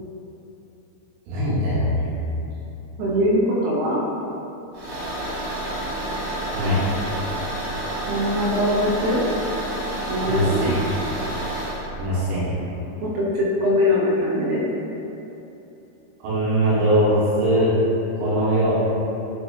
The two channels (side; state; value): left; late; 23 ms